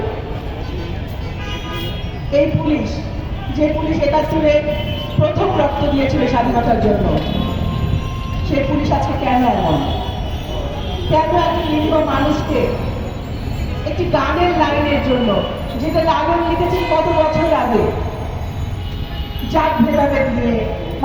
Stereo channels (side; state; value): both; identical; correlation 1.00